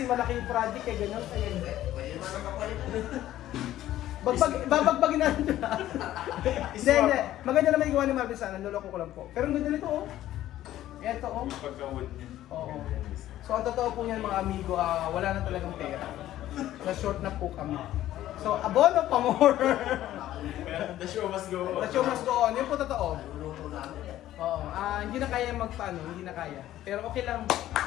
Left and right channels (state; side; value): quieter; right; 13.5 dB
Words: malaki yung project eh, ganyan. Kaya hindi. Babagbagin natin ito. Hindi. Maganda naman yung gawa ni Marvin sana, niloloko ko lang po. Pero ang ganda nito oh. Ito oh. Pagka-wood niya. Oo. So ang totoo po niyan mga amigo, wala na talagang pera. Na-short na po kami. So abono pa more. The show must go on. The show must go on. Yun po totoo. Oo. Hindi na kaya magpaano, hindi na kaya. Pero okay lang.